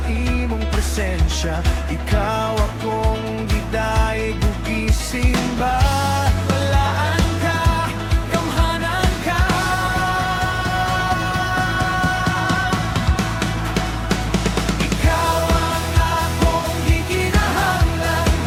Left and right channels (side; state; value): both; identical; correlation 1.00